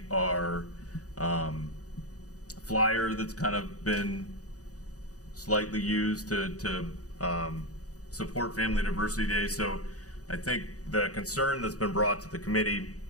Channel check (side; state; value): right; late; 0.67 ms